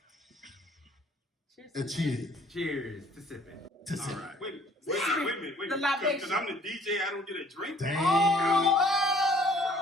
Cheers. And cheers. Cheers to sipping. To All sip. right. Wait a minute. The libation. Because I'm the DJ, I don't get a drink. Damn.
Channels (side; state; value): both; normal; correlation 0.57